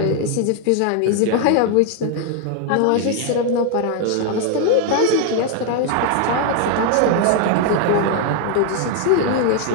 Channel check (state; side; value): different; both; correlation 0.01